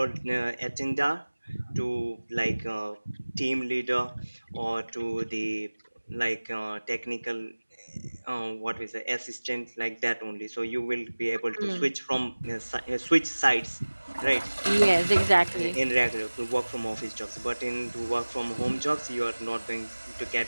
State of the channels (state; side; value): inverted; both; correlation -1.00